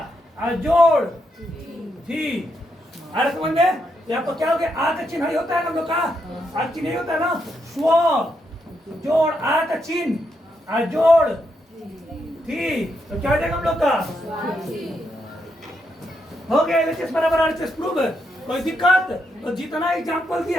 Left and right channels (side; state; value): both; normal; correlation 0.80